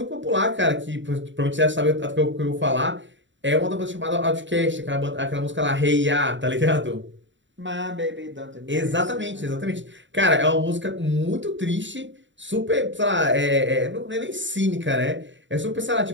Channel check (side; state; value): left; late; 0.54 ms